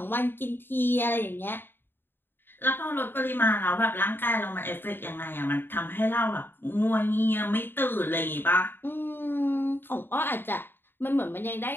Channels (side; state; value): right; late; 0.099 ms